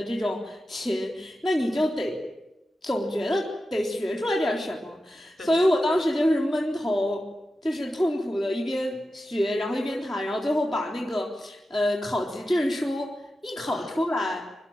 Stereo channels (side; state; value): both; normal; correlation 0.92